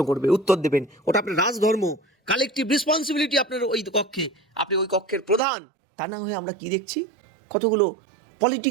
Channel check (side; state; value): left; drops out; at 5.4 s